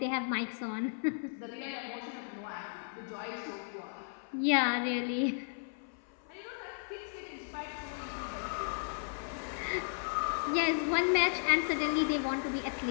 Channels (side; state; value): right; silent; 54 dB below the other